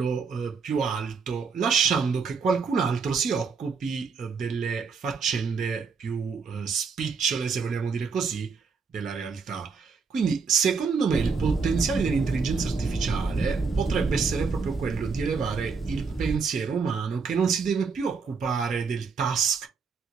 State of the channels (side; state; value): left; quieter; 5.2 dB